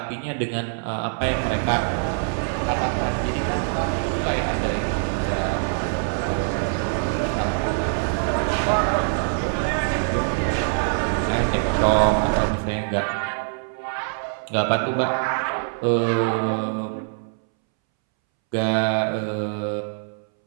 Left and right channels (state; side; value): silent; left; 63 dB below the other